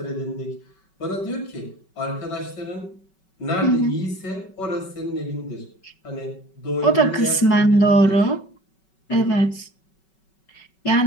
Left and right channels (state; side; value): late; right; 5.3 ms